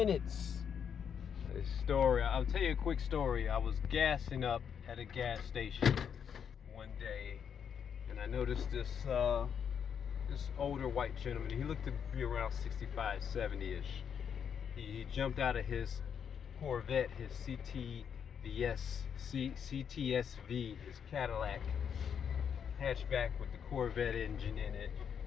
This story, I'll tell you a quick story. I was gassing up at a gas station one day, and I noticed this older white gentleman. He looked to be around 65, 70-ish. He jumped out of his Corvette, his CTSV, his Cadillac hatchback with the Corvette engine in it,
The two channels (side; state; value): right; quieter; 7.6 dB